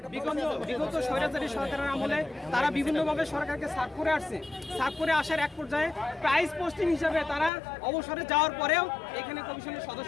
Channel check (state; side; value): drops out; right; at 7.5 s